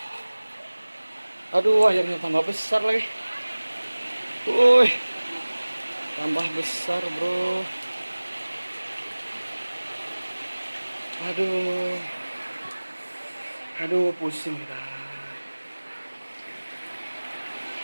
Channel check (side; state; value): both; inverted; correlation -1.00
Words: Aduh, airnya tambah besar lagi. Woi. Tambah besar, bro. Aduh, pusing dah.